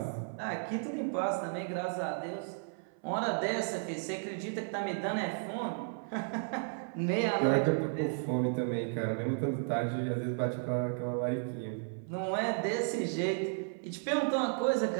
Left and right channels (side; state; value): left; silent; 55 dB below the other